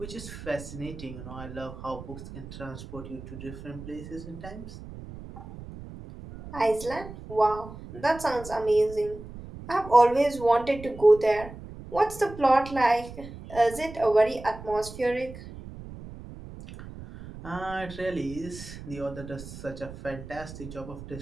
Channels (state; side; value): noise; right; rumble, 13 dB below the sound